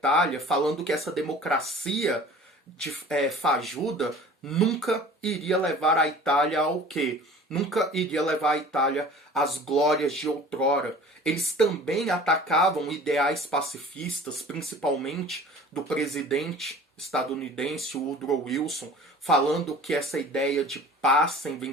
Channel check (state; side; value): normal; both; correlation 0.44